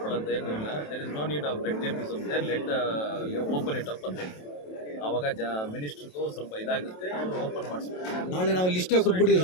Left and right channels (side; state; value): right; late; 27 ms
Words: ಏನೂ ಇಲ್ಲ. There is no need of red tapeism there, let open it up ಅಂತ ಹೇಳ್ತೀವಿ. ಆವಾಗ ಮಿನಿಸ್ಟ್ರಿಗೂ ಸ್ವಲ್ಪ ಇದಾಗುತ್ತೆ, ಅವರು ಓಪನ್ ಮಾಡಿಸ್ಬೇಕು. ನಾಳೆ ನಾವು ಲಿಸ್ಟೇ ಕೊಟ್ಬಿಡಿ